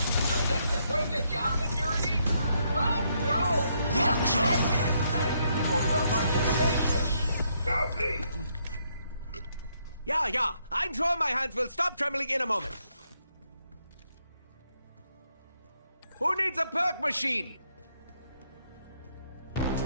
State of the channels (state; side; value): inverted; both; correlation -0.75